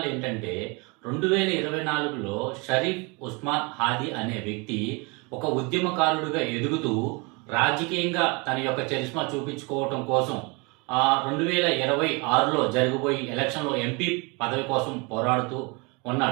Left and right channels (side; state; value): left; quieter; 29.2 dB